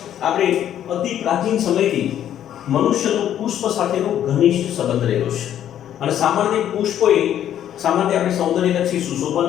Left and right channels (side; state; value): right; quieter; 10.7 dB